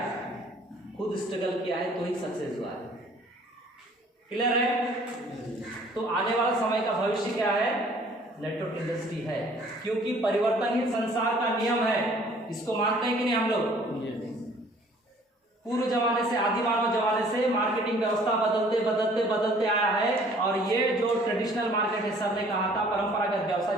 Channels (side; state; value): both; normal; correlation 0.55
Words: खुद स्ट्रगल किया है तो ही सक्सेस हुआ है। क्लियर है? तो आने वाला समय का भविष्य क्या है? नेटवर्क इंडस्ट्री है, क्योंकि परिवर्तन ही संसार का नियम है। इसको मानते हैं कि नहीं हम लोग? पूर्व जमाने से, आदि मानव जमाने से मार्केटिंग व्यवस्था बदलते बदलते बदलते आया है, और ये जो ट्रेडिशनल मार्केट है, सर ने कहा था परंपरागत व्यवसाय